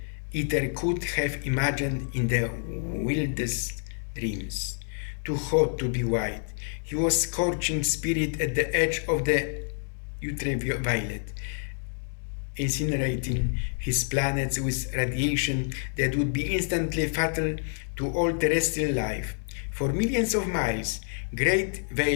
could have imagined in the wildest dreams. Too hot to be white, he was scorching spirit at the edge of the ultraviolet, incinerating his planets with radiation that would be instantly fatal to all terrestrial life. For millions of miles, great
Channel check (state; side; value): silent; right; 59 dB below the other